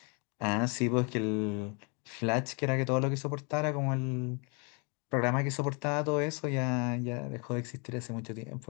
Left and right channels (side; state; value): right; quieter; 34.5 dB